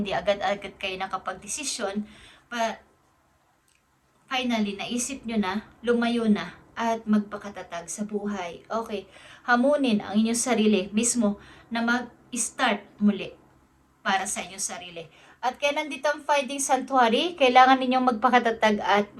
agad-agad kayo nakapag-desisyon. But finally, naisip nyo na, lumayo na, at magpakatatag sa buhay. Okay, hamunin ang inyong sarili mismo na mag-start muli para sa inyong sarili. At kaya nandito ang Finding Sanctuary, kailangan ninyong magpakatatag at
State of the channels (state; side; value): identical; both; correlation 1.00